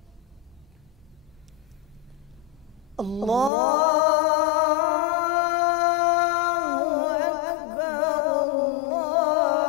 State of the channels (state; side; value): drops out; right; at 3.5 s